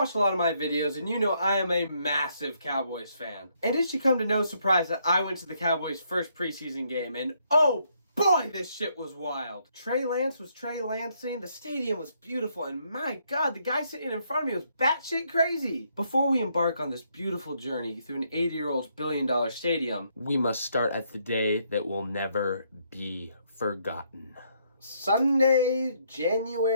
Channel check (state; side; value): inverted; both; correlation -0.73